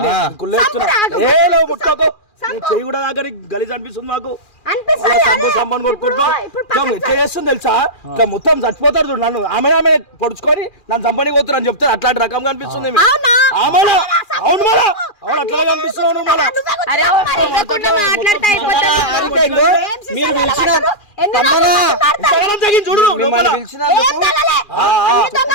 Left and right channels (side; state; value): right; late; 2.4 ms